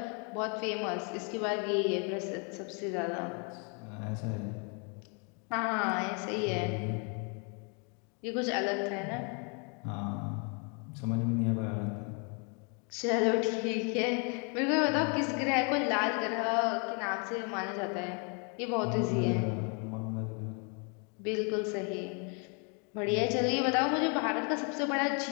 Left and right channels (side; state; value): right; quieter; 36.3 dB